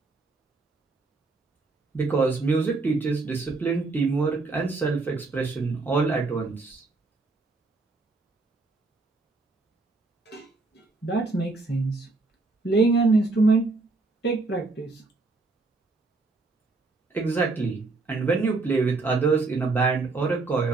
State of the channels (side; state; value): left; quieter; 3.6 dB